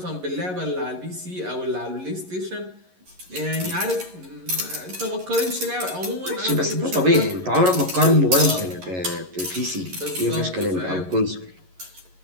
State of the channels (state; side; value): late; left; 11 ms